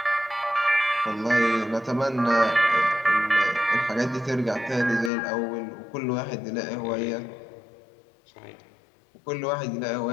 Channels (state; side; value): drops out; right; at 5.1 s